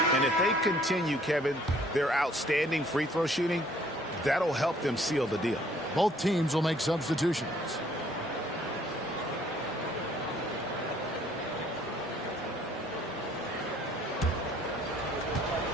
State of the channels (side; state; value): both; normal; correlation 0.60